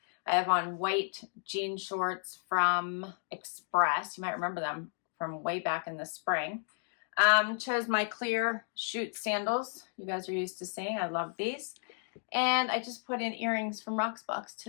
I have on white jean shorts from Express. You might remember them from way back in the spring. Chose my clear chute sandals. You guys are used to seeing. I love these. And I just put in earrings from Rocksbox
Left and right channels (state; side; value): silent; right; 56 dB below the other